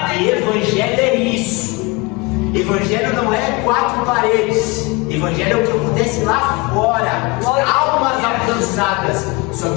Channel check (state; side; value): quieter; right; 25.8 dB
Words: porque evangelho é isso. Evangelho não é 4 paredes, evangelho é o que acontece lá fora, almas alcançadas. Só